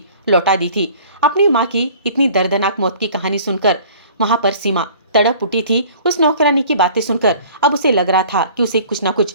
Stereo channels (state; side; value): inverted; both; correlation -0.49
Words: लौटा दी थी। अपनी माँ की इतनी दर्दनाक मौत की कहानी सुनकर वहां पर सीमा तड़प उठी थी। उस नौकरानी की बातें सुनकर अब उसे लग रहा था कि उसे कुछ ना